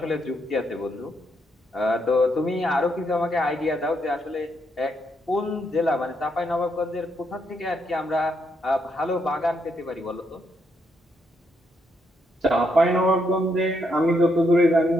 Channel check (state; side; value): normal; both; correlation 0.77